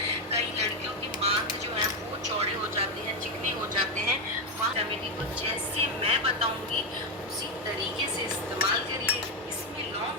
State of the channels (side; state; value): both; normal; correlation 0.07